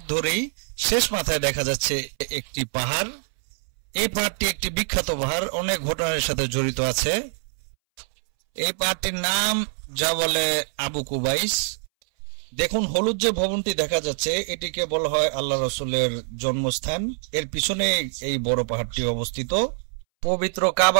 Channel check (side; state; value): left; silent; 62 dB below the other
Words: ধরেই শেষ মাথায় দেখা যাচ্ছে একটি পাহাড়। এই পাহাড়টি একটি বিখ্যাত পাহাড়, অনেক ঘটনার সাথে জড়িত আছে। এই পাহাড়টির নাম যা বলে আবু কুবাইস। দেখুন, হলুদ যে ভবনটি দেখা যাচ্ছে এটিকে বলা হয় আল্লাহ রসুলের জন্মস্থান। এর পিছনে এই বড় পাহাড়টি অবস্থিত। পবিত্র